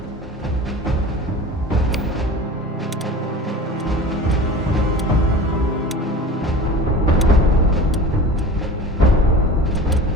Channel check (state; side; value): normal; both; correlation 0.36